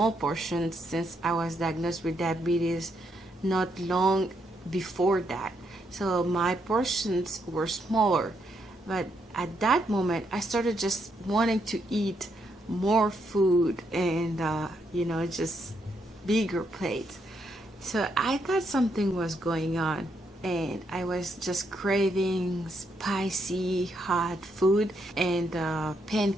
portions since I was diagnosed with diabetes not long before that. So my portions were smaller. But at that moment, I started just wanting to eat more food and, just bigger plates. So I thought something was going on, and I was just craving spicy hot food and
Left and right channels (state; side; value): normal; both; correlation 0.77